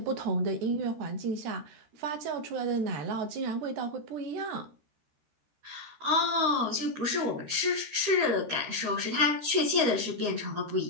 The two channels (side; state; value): left; late; 13 ms